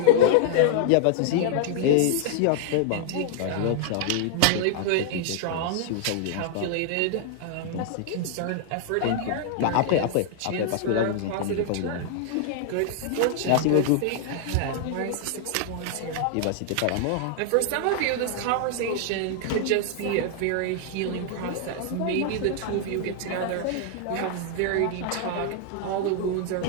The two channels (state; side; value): different; both; correlation -0.01